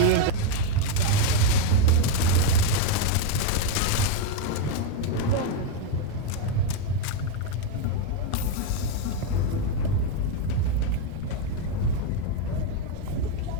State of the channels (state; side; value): different; both; correlation 0.01